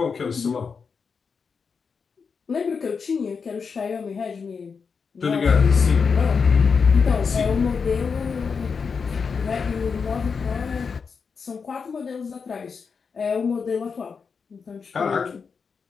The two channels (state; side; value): quieter; right; 5.6 dB